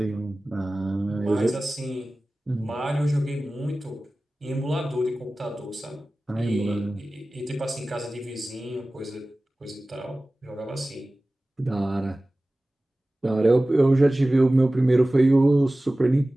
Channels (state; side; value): normal; both; correlation 0.97